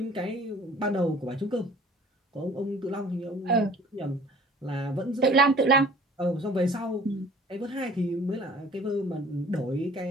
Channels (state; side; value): normal; both; correlation 0.51